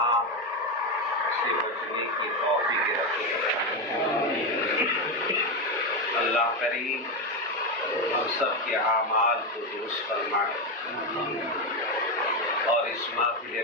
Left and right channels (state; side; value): normal; both; correlation 0.11